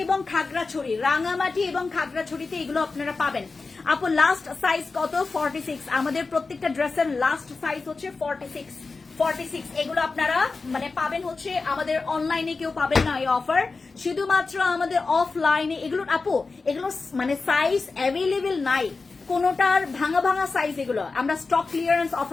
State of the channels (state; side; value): quieter; right; 4.1 dB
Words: এবং খাগড়াছড়িতে এগুলো আপনারা পাবেন। আপু লাস্ট সাইজ কত? 46। আমাদের প্রত্যেকটা ড্রেসের লাস্ট সাইজ হচ্ছে 46। এগুলো আপনারা মানে পাবেন হচ্ছে আমাদের অনলাইনে, কেউ পাবেন না এই অফার, শুধুমাত্র আমাদের অফলাইনে। এগুলো আপু এগুলো মানে সাইজ অ্যাভেলেবেল নাই, কোনোটার ভাঙা ভাঙা সাইজ, এগুলো আমরা স্টক ক্লিয়ারেন্স